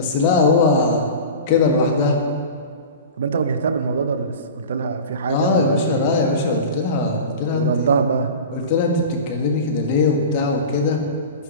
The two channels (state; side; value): inverted; both; correlation -0.32